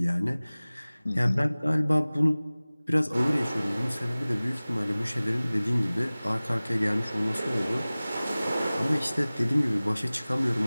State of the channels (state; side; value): inverted; both; correlation -0.99